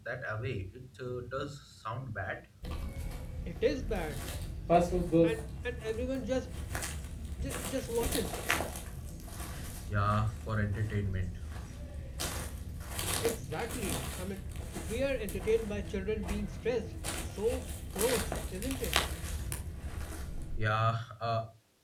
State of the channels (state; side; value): identical; both; correlation 1.00